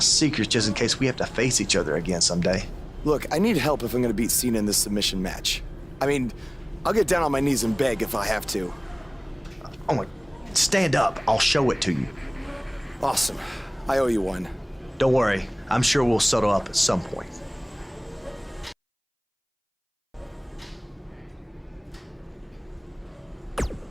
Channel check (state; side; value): identical; both; correlation 1.00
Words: just in case we have to face each other again someday. Look, I need help if I'm gonna beat Cena in this submission match. I mean, I'll get down on my knees and beg if I have to. Oh my, stand up, I'll show it to you. Awesome, I owe you one. Don't worry, I'm sure we'll settle up at some point.